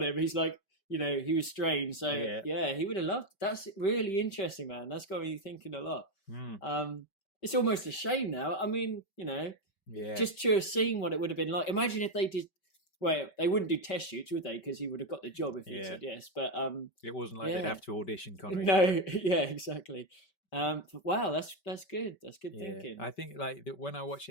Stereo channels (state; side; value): late; right; 5.2 ms